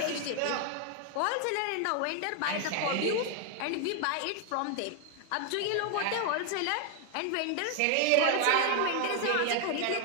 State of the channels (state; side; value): different; both; correlation 0.00